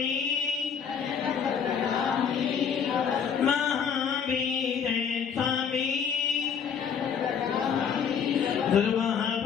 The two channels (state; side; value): quieter; right; 7.1 dB